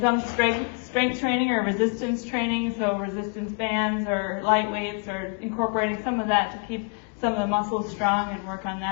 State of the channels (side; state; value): right; quieter; 35.4 dB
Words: strength training or resistance training, so resistance bands or light weights, or incorporating some of that to keep some of the muscles strong and work on